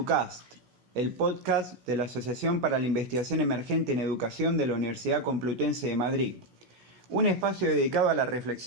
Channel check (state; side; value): late; left; 16 ms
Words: el podcast de la Asociación para la Investigación Emergente en Educación de la Universidad Complutense de Madrid. Un espacio dedicado a la